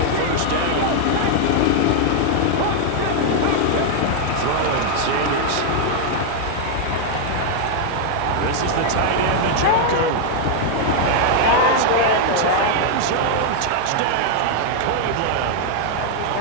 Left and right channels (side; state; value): both; different; correlation 0.00